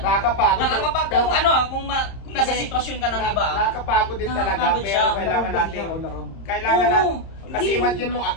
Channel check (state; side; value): late; right; 30 ms